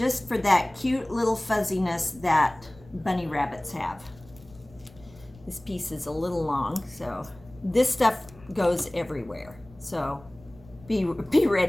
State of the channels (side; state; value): left; noise; rumble, 23 dB below the sound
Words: for that cute little fuzziness that bunny rabbits have. This piece is a little long, so this stuff goes everywhere. So be